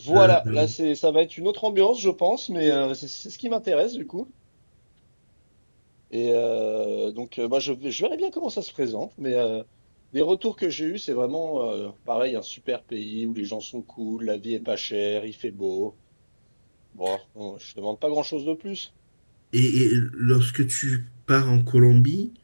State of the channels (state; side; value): inverted; both; correlation -1.00